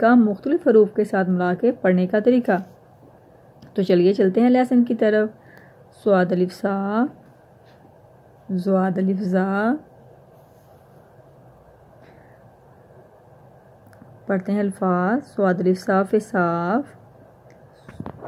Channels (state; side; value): identical; both; correlation 1.00